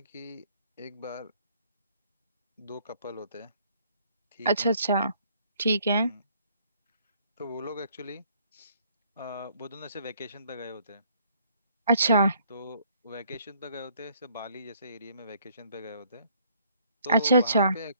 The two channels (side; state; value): both; inverted; correlation -0.64